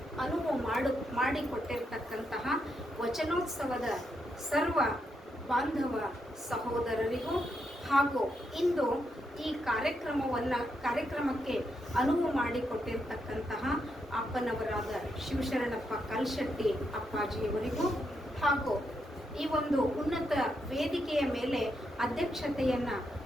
ಅನುವು ಮಾಡಿಕೊಟ್ಟಿರ್ತಕ್ಕಂತಹ ವಚನೋತ್ಸವದ ಸರ್ವ ಬಾಂಧವ ಸಹೋದರರಿಗೂ ಹಾಗೂ ಇಂದು ಈ ಕಾರ್ಯಕ್ರಮಕ್ಕೆ ಅನುವು ಮಾಡಿಕೊಟ್ಟಿರ್ತಕ್ಕಂತಹ ಅಪ್ಪನವರಾದ ಶಿವಶರಣಪ್ಪ ಕಲ್ಶೆಟ್ಟಿ ಅಪ್ಪಾಜಿಯವರಿಗೂ ಹಾಗೂ ಈ ಒಂದು ಉನ್ನತ ವೇದಿಕೆಯ ಮೇಲೆ ಅಧ್ಯಕ್ಷತೆಯನ್ನು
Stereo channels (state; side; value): normal; both; correlation 0.81